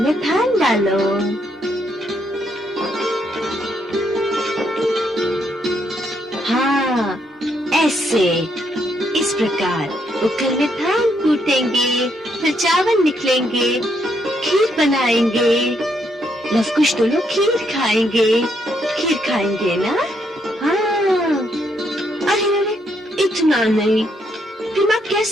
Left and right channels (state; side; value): normal; both; correlation 0.75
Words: धान डालो। हाँ ऐसे, इस प्रकार उखल में धान कूटेंगे, फिर चावल निकलेंगे, खीर बनाएंगे। लवकुश तो लोग खीर खाएंगे ना? हाँ। अरे अरे इतना नहीं, फिर माँ